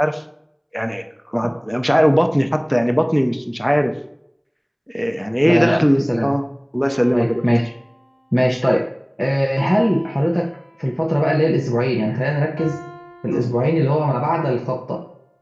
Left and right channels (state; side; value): identical; both; correlation 1.00